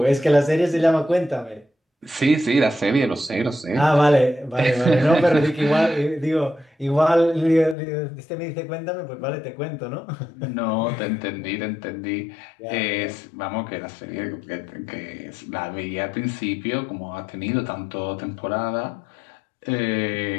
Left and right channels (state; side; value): drops out; right; at 7.8 s